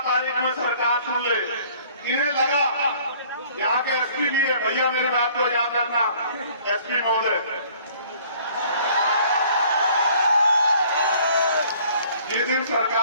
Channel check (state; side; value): inverted; both; correlation -0.56